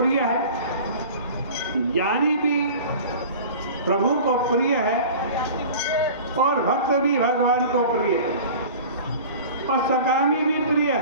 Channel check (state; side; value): inverted; both; correlation -0.39